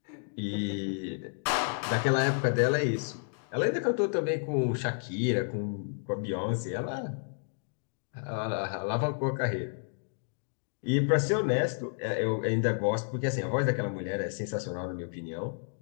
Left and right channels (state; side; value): silent; right; digital silence